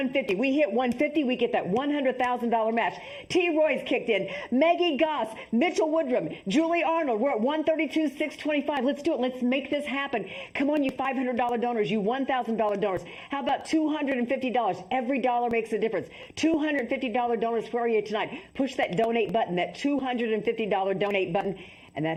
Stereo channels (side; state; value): both; identical; correlation 1.00